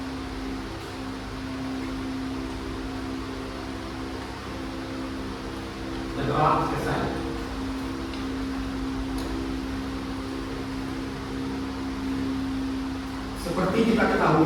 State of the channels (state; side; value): identical; both; correlation 1.00